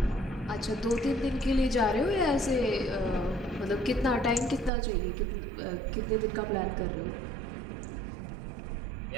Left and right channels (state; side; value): drops out; left; at 4.7 s